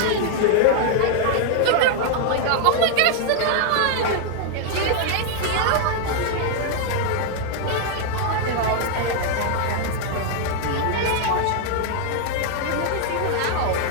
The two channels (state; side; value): different; both; correlation 0.00